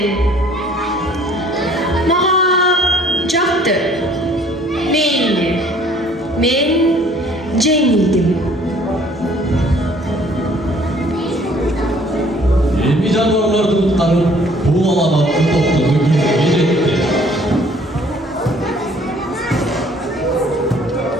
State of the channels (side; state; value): both; normal; correlation 0.57